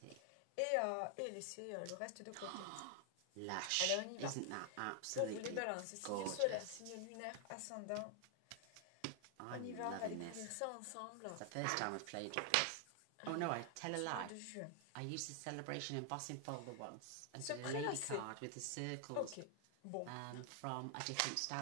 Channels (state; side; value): different; both; correlation 0.00